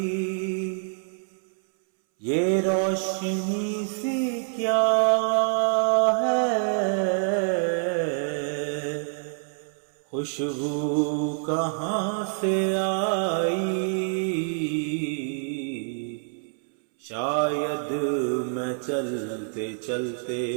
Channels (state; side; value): silent; left; 61 dB below the other